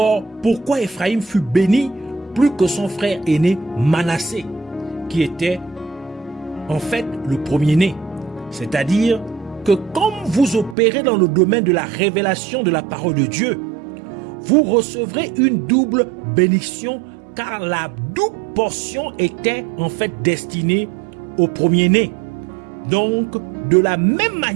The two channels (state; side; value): drops out; left; at 10.8 s